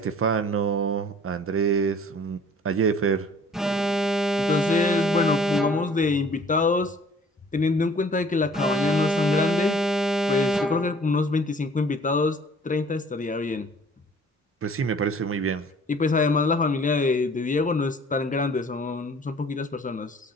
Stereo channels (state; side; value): normal; both; correlation 0.53